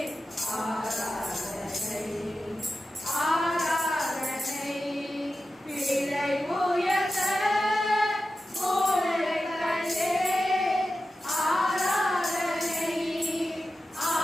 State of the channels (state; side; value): normal; both; correlation 0.92